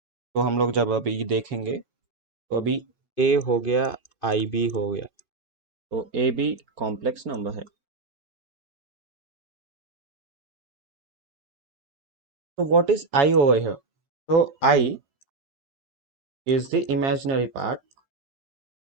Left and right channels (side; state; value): left; quieter; 3.7 dB